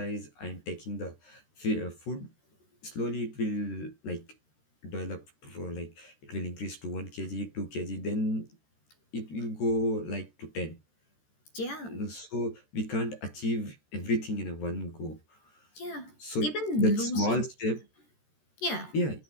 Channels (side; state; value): right; late; 13 ms